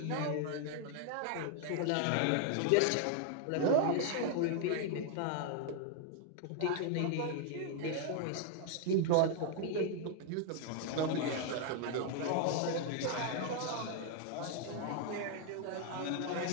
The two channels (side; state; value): both; different; correlation 0.00